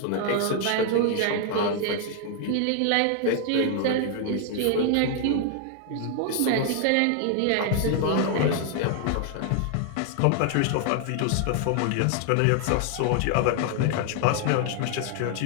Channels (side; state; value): both; different; correlation 0.00